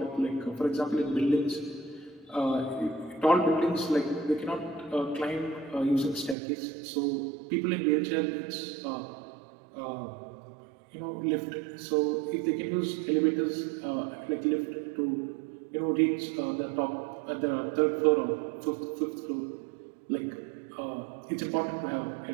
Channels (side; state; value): left; drops out; at 6.4 s